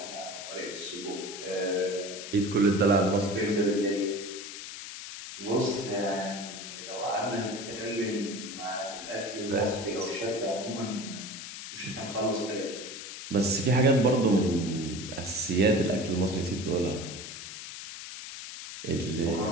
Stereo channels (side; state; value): left; noise; hiss, 10 dB below the sound